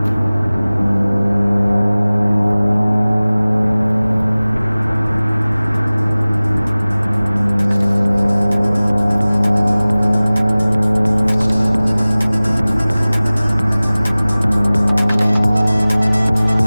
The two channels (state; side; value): inverted; both; correlation -0.99